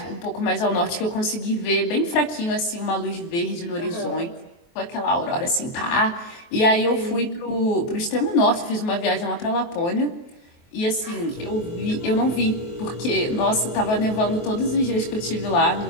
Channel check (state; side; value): late; right; 23 ms